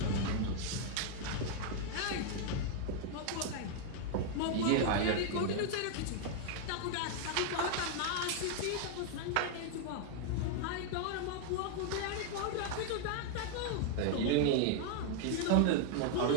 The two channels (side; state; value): both; different; correlation 0.00